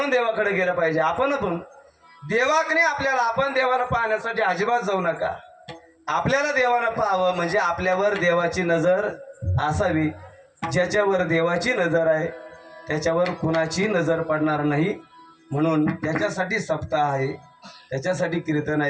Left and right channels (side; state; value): both; identical; correlation 1.00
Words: देवाकडे गेलं पाहिजे. आपण देवाकडे आपल्याला, आपण देवाला पाहण्यासाठी अजिबात जाऊ नका. आपल्याला देवानं पाहावं म्हणजे आपल्यावर देवाची नजर असावी. ज्याच्यावर देवाची नजर आहे त्याच्यावर कुणाची नजर पडणार नाही. म्हणून त्याच्यासाठी सप्ताह आहे, त्याच्यासाठी कीर्तन